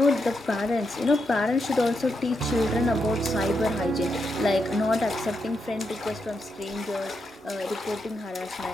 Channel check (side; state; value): both; normal; correlation 0.83